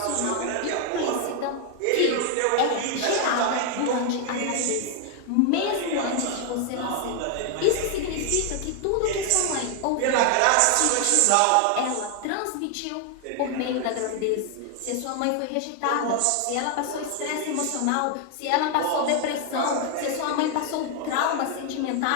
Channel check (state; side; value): different; both; correlation 0.00